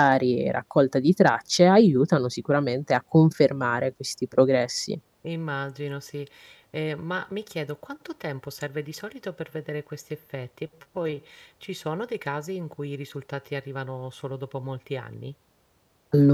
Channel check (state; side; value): identical; both; correlation 1.00